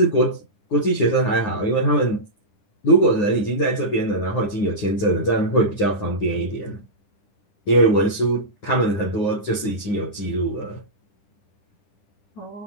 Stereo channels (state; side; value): late; right; 10 ms